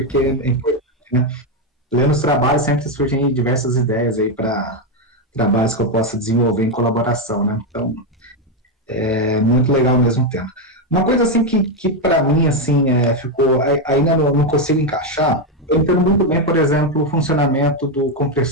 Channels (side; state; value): both; normal; correlation 0.06